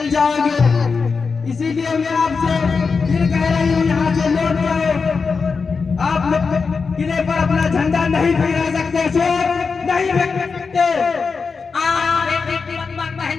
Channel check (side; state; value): right; quieter; 5.0 dB